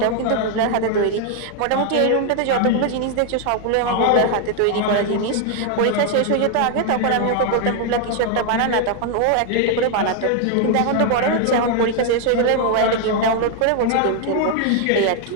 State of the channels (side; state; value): both; different; correlation 0.00